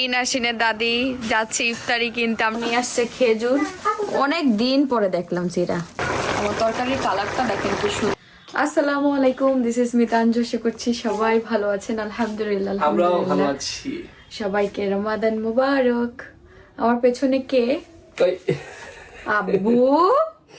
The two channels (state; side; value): identical; both; correlation 1.00